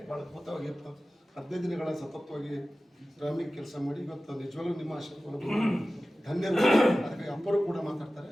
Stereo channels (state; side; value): normal; both; correlation 0.96